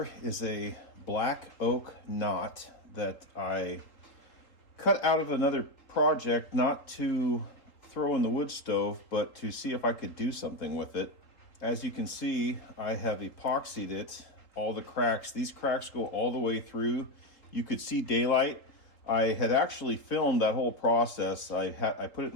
is a black oak knot that I cut out of another project, not to throw in the wood stove, but to see if I could do something with it. As you can see, I have epoxied it, all the cracks. These cracks go all the way through. You could see daylight. I had actually filmed that whole process. I put it in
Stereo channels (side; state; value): right; late; 3.8 ms